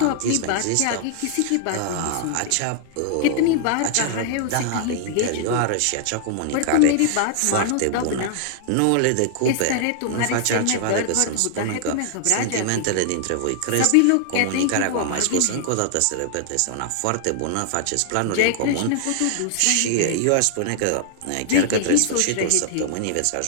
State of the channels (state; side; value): different; both; correlation -0.01